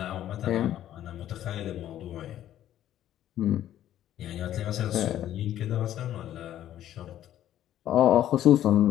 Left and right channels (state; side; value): quieter; right; 12.1 dB